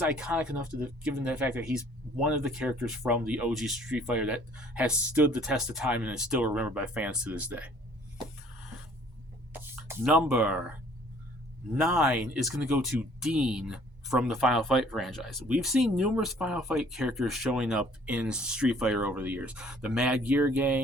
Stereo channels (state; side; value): late; left; 1.0 ms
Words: iconic enough given the fact that he's one of the characters from the OG Street Fighter that has stood the test of time and is still remembered by fans to this day. Number 9 is going to go to Dean from the Final Fight franchise. We've seen numerous Final Fight characters showing up in Street Fighter over the years. The Mad Gear